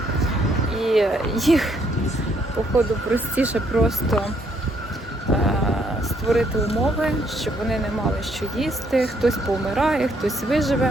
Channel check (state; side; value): normal; both; correlation 0.70